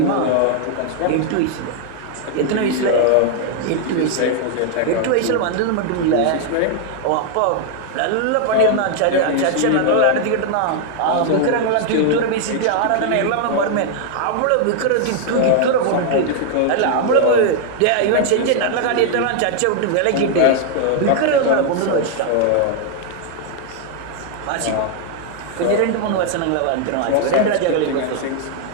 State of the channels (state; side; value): different; both; correlation 0.00